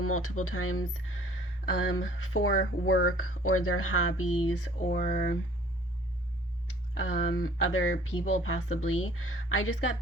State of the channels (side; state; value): both; normal; correlation 0.54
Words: multiple times for work or their hobbies or other people possibly. I just got